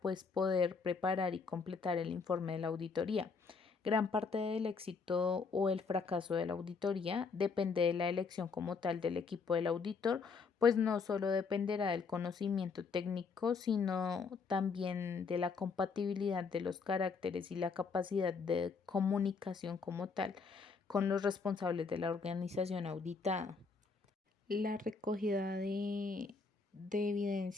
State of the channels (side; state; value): right; quieter; 4.9 dB